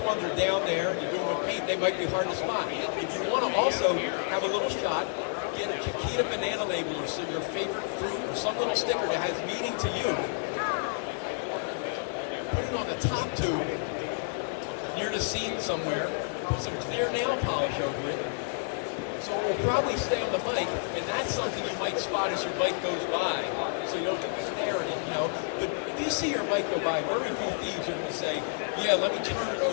ones are down there, you're doing with paint, they might be hard to spot. If you want to also have a little shot, get a Chiquita banana label or so your favorite fruit or some little sticker that has meaning to you. Put it on the top tube, near the seat somewhere, put some clear nail polish over it, so it will probably stay on the bike, and that's something you might spot as your bike goes by, so you don't have to stare at it, you know. But if you see your bike go by, very few thieves are going to say, yeah, let me turn it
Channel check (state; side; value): silent; right; digital silence